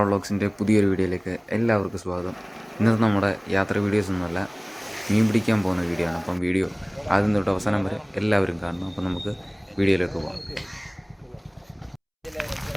വ്ളോഗ്സിൻ്റെ പുതിയൊരു വീഡിയോയിലേക്ക് എല്ലാവർക്കും സ്വാഗതം. ഇന്നത്തെ നമ്മുടെ യാത്ര വീഡിയോസ് ഒന്നുമല്ല, മീൻ പിടിക്കാൻ പോകുന്ന വീഡിയോ ആണ്. അപ്പം വീഡിയോ ആദ്യം തൊട്ട് അവസാനം വരെ എല്ലാവരും കാണണം. അപ്പം നമുക്ക് വീഡിയോയിലേക്ക് പോകാം.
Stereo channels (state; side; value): identical; both; correlation 1.00